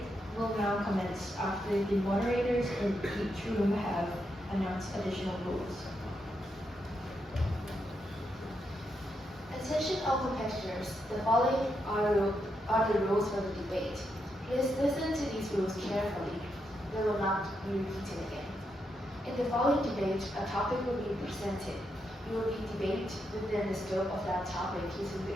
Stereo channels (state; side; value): normal; both; correlation 0.82